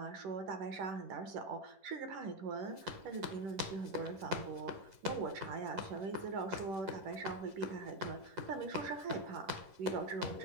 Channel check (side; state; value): left; late; 10 ms